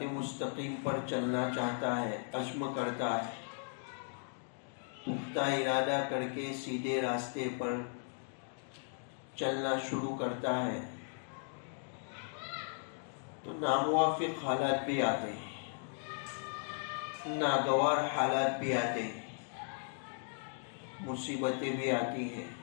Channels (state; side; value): silent; right; 53 dB below the other